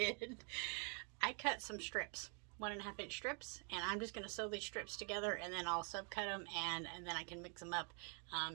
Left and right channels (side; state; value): left; quieter; 37.3 dB